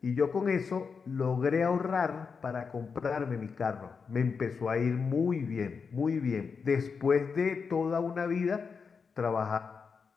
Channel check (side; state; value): right; quieter; 5.5 dB